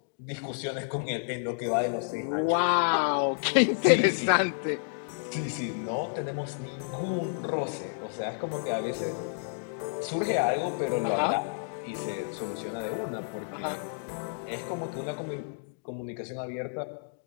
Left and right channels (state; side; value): silent; right; digital silence